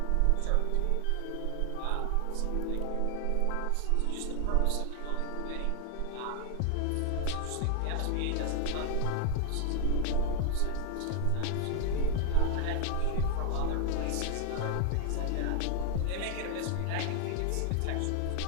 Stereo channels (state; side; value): different; both; correlation 0.00